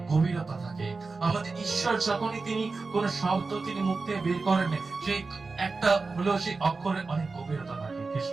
গভীরতা থাকে। আমাদের ঈশ্বর যখনই তিনি কোন শব্দ তিনি মুখ থেকে বের করেন, সেই একটা হলেও সেই অক্ষরের অনেক গভীরতা থাকে।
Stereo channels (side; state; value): left; quieter; 4.0 dB